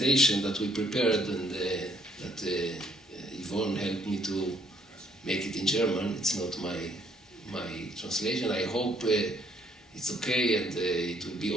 that we prepared, and that Yvonne helped me to make it in German, it's not my translation. I hope it's okay and it will be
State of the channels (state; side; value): normal; both; correlation 0.66